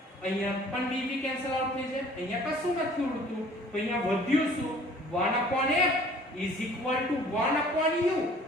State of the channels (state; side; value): normal; both; correlation 0.52